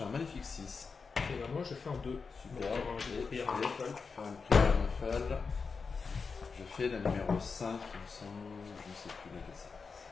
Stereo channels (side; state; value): right; quieter; 5.0 dB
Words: un magnifique 6. Et ben moi je fais un 2. Super. Donc, Et j'ai je pris vais un raffle. faire une prière raffle. Je fais la numéro 5, il me semble. Je ne sais plus laquelle c'est.